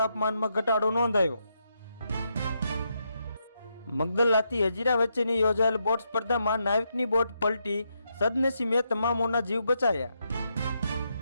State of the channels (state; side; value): inverted; both; correlation -0.81